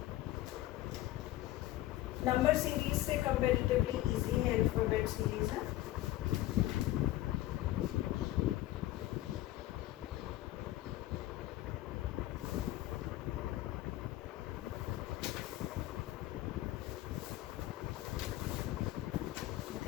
नंबर सीरीज से कंपैरेटिवली इजी है, अल्फाबेट सीरीज है।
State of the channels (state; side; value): quieter; right; 15.5 dB